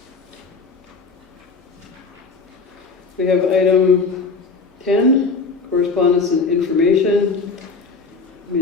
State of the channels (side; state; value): right; quieter; 4.3 dB